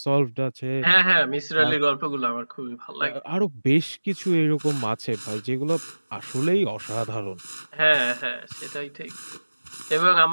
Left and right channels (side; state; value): both; inverted; correlation -1.00